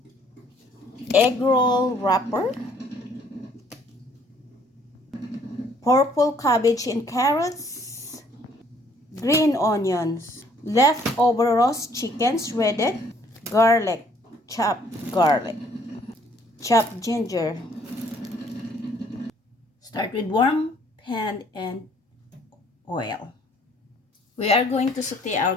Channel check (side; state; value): both; normal; correlation 0.62